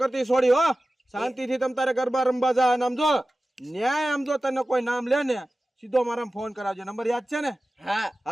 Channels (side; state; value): both; normal; correlation 0.95